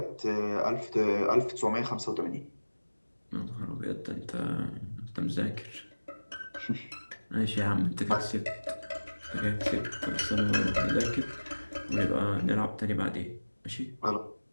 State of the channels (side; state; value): both; inverted; correlation -1.00